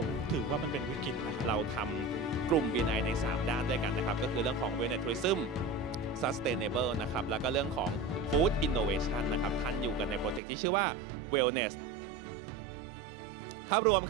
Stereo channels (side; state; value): left; drops out; at 10.4 s